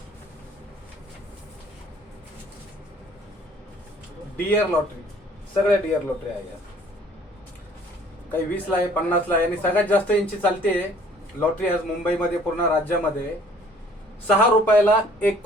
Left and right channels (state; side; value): normal; both; correlation 0.56